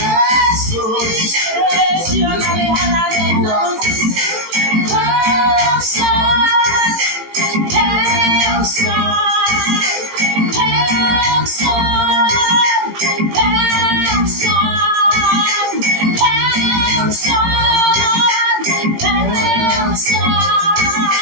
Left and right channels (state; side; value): late; left; 18 ms